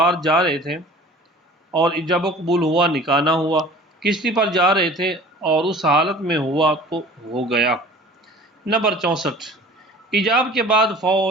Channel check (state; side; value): normal; both; correlation 0.45